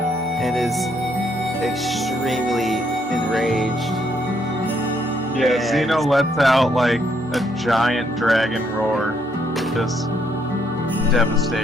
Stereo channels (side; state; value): both; normal; correlation 0.72